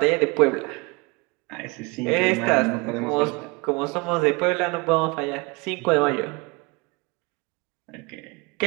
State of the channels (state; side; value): quieter; left; 27.4 dB